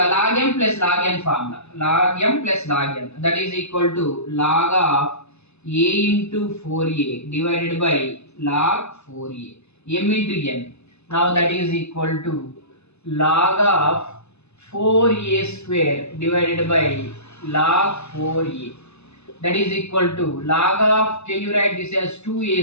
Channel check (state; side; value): late; right; 0.80 ms